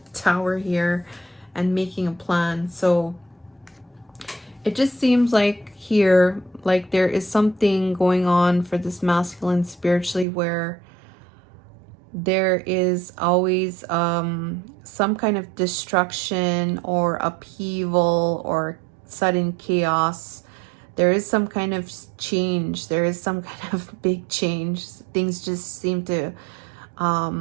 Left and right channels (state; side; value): drops out; left; at 10.2 s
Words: tower here and making a plan. So it just seems like here, like there is something going on for this masculine spiritually, where there is always some kind of destruction or upheaval or sudden chaos. There is some kind of change. There is some kind of big change. Things just seem to